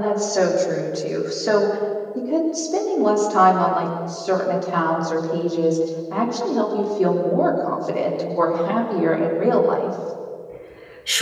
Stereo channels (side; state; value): both; identical; correlation 1.00